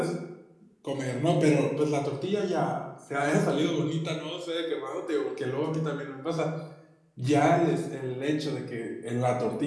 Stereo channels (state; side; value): identical; both; correlation 1.00